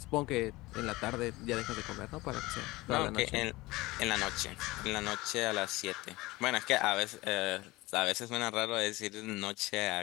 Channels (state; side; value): quieter; right; 20.5 dB